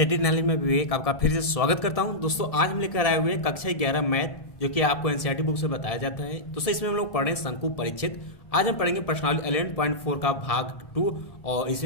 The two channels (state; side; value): late; right; 1.7 ms